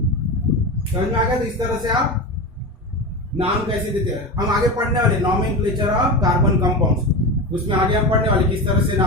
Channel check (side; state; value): both; normal; correlation 0.23